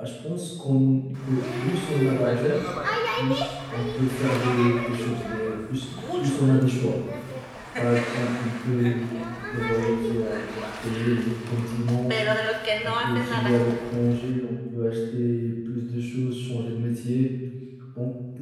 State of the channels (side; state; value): both; identical; correlation 1.00